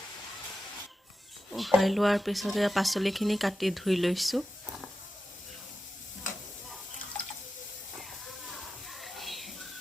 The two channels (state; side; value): normal; both; correlation 0.91